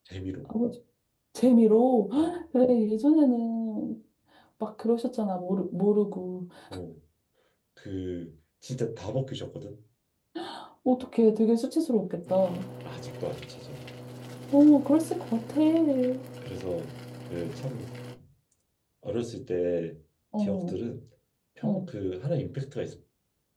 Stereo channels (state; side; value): identical; both; correlation 1.00